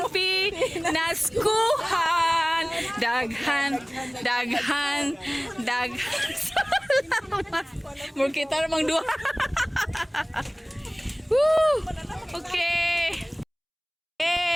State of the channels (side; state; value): both; identical; correlation 1.00